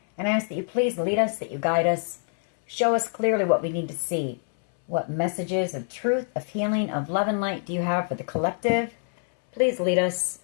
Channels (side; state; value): right; silent; 61 dB below the other